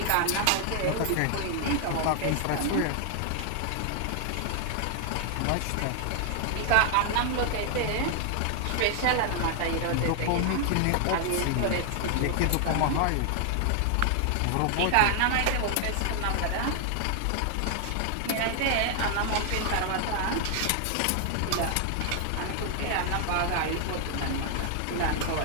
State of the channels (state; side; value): different; both; correlation 0.00